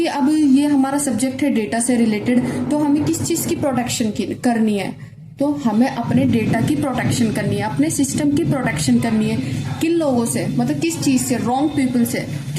अब ये हमारा सब्जेक्ट है डेटा से रिलेटेड, तो हमें किस चीज की प्रोटेक्शन करनी है? तो हमें अपने डेटा की प्रोटेक्शन करनी है, अपने सिस्टम की प्रोटेक्शन करनी है। किन लोगों से, मतलब किस चीज से? रॉन्ग पीपल से,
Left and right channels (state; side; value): identical; both; correlation 1.00